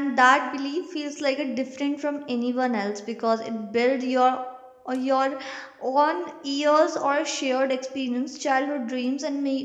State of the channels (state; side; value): identical; both; correlation 1.00